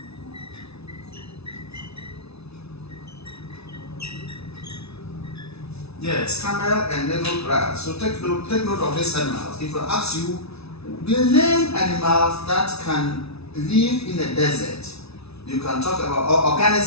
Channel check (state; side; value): late; right; 0.80 ms